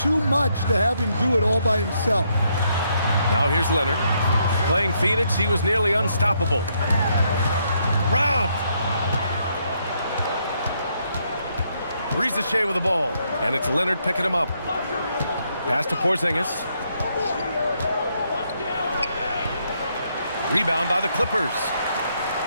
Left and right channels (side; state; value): both; inverted; correlation -0.75